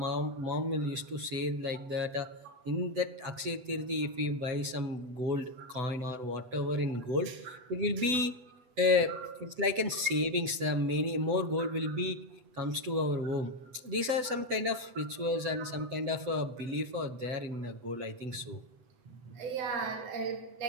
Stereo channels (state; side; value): late; left; 7.9 ms